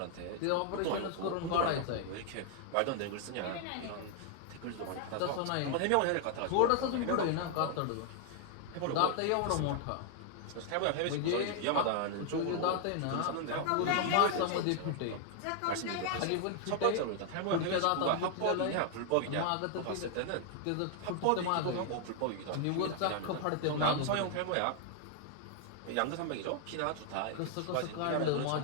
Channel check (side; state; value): both; different; correlation 0.00